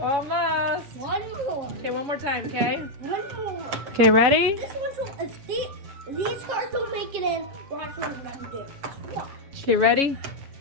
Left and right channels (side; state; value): left; late; 7.2 ms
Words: almost. One more. Okay, one more time, okay? One more. Okay, ready? This one, if these cards don't make it in, watch what I'm gonna do. Watch. Okay, ready?